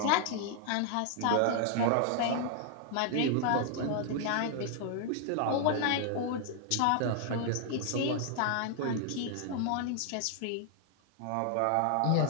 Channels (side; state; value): both; different; correlation 0.00